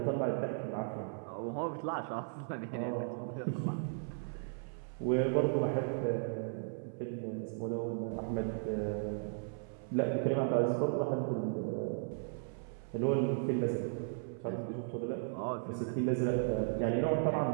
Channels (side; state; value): left; silent; 54 dB below the other